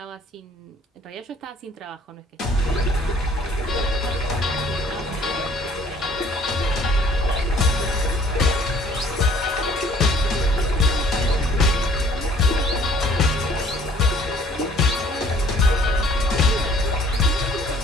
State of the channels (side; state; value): both; normal; correlation 0.57